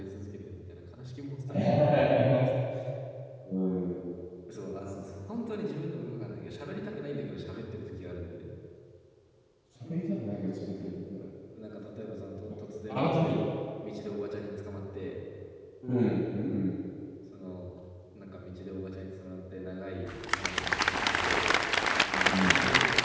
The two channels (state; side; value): identical; both; correlation 1.00